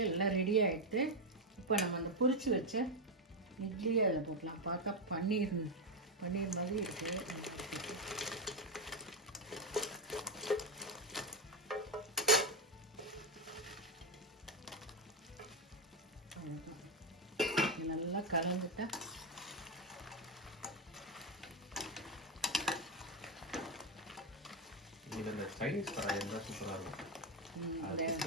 எல்லாம் ரெடி ஆகிடுது. இப்போ நம்ம அந்த பொரிச்சு வச்ச இட்லியை அதில் போட்டலாம். பார்த்தா பன்னீர் மாதிரி இருக்குது. நல்லா கலந்துட்டா சைனீஸ் கடாய் இருந்தால் சூப்பராக இருக்கும். ஒரே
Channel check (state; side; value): normal; both; correlation 0.07